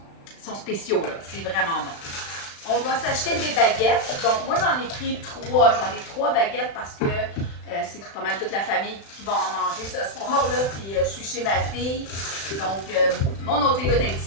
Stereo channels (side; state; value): right; late; 36 ms